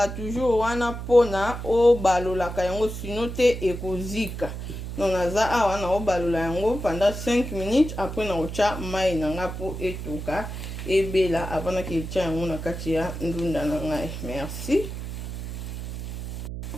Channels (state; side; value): noise; right; hum, 7 dB below the sound